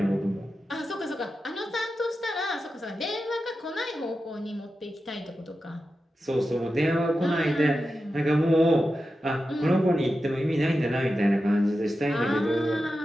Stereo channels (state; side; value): normal; both; correlation 0.91